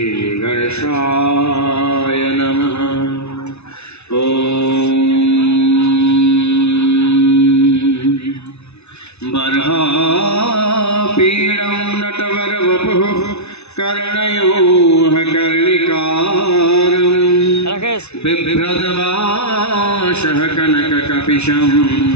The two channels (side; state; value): right; late; 0.81 ms